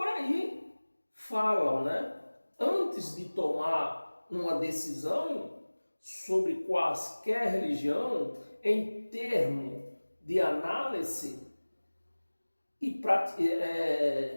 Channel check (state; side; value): inverted; both; correlation -1.00